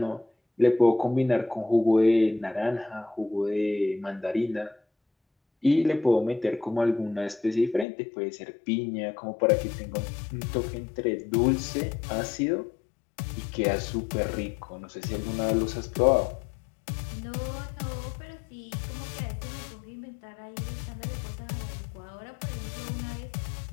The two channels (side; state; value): right; drops out; at 7.9 s